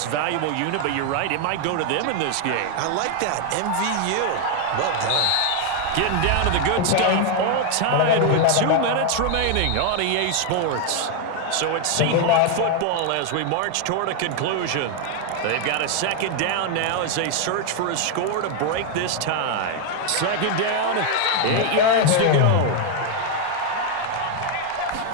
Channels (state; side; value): different; both; correlation 0.01